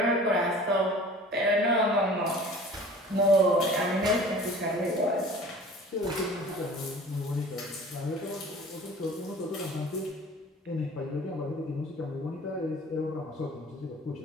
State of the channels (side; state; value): both; normal; correlation 0.44